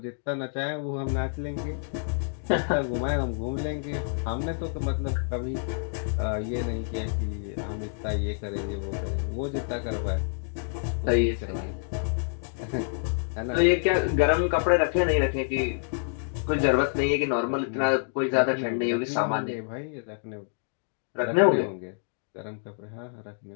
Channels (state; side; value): silent; right; digital silence